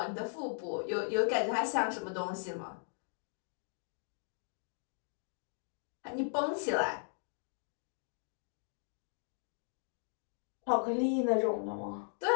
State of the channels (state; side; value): silent; right; digital silence